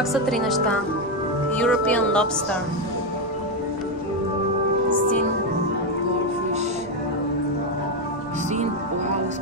са три неща. European lobster. Син.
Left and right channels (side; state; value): right; noise; rumble, 26 dB below the sound